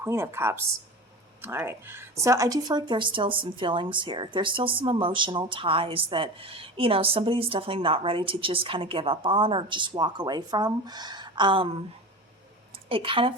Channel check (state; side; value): normal; both; correlation 0.30